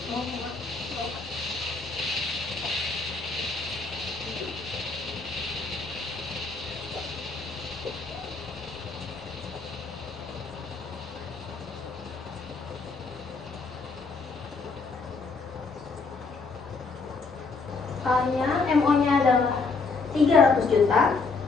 MO-nya adalah 300 juta.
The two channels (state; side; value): quieter; right; 4.3 dB